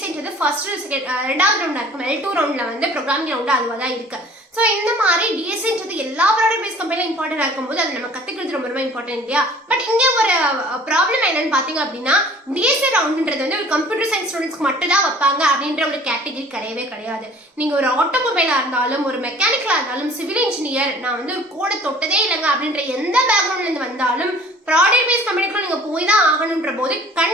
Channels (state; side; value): normal; both; correlation 0.49